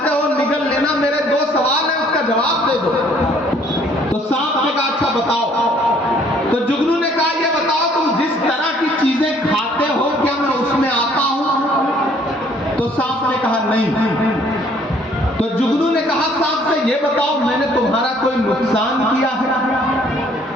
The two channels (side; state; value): both; normal; correlation 0.60